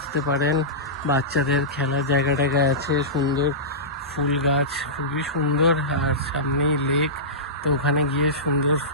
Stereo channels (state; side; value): normal; both; correlation -0.17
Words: পারেন। বাচ্চাদের খেলার জায়গাটা আছে, সুন্দর ফুল গাছ, খুবই সুন্দর। আর সামনেই লেক, তো ওখানে গিয়ে সুন্দর